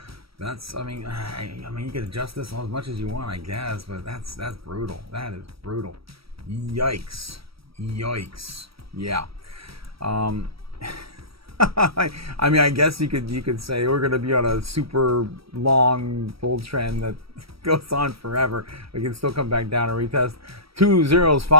That's I mean you could adjust this as much as you want, I guess, but that's brutal. That is brutal. Yikes. Yeah. I mean, I guess you could say we're going to be on a super long bull trend that goes on forever. We can still come back down and retest 2 zeros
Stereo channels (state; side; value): late; left; 0.75 ms